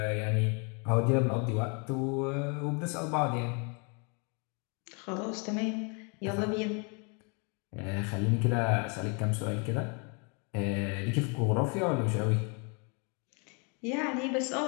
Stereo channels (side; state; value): right; quieter; 34.8 dB